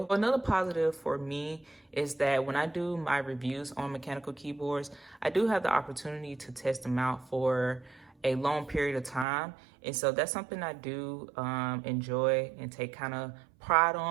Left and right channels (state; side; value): drops out; left; at 9.2 s